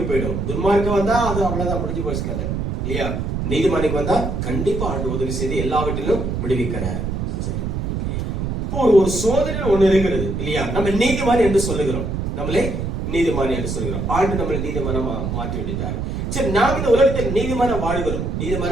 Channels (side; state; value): right; noise; rumble, 2 dB below the sound